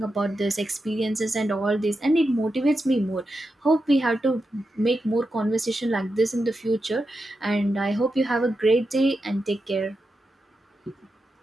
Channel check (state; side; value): normal; both; correlation 0.88